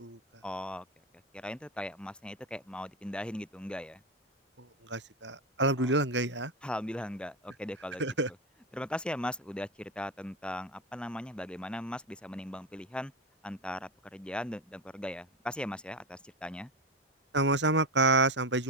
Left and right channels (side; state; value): both; normal; correlation 0.15